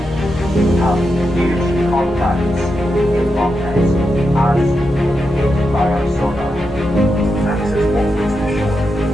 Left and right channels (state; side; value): normal; both; correlation 0.86